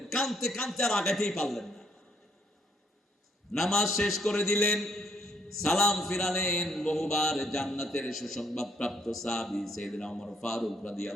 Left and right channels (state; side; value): normal; both; correlation 0.69